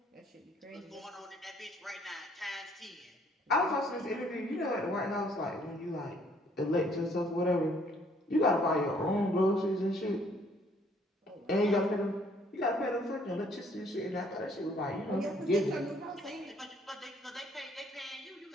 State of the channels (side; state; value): both; normal; correlation 0.63